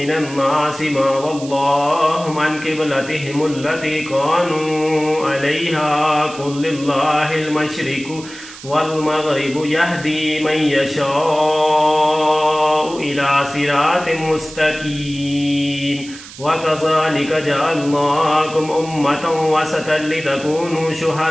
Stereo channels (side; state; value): right; noise; hiss, 16 dB below the sound